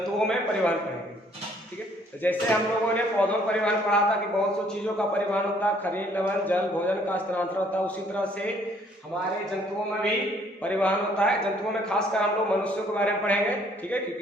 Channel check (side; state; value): both; normal; correlation 0.62